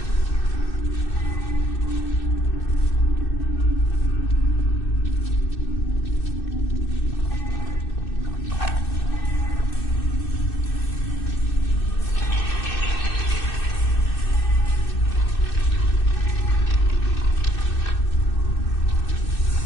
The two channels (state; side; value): late; right; 2.6 ms